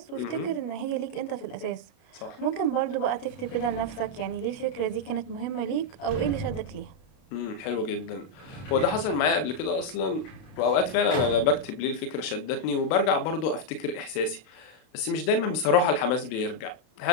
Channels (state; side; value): late; right; 32 ms